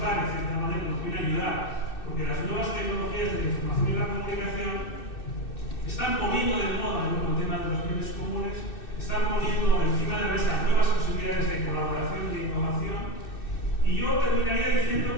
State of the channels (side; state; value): right; late; 2.6 ms